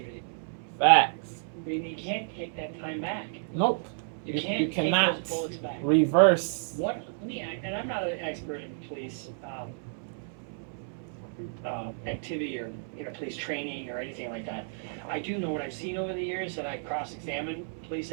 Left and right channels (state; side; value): silent; left; 57 dB below the other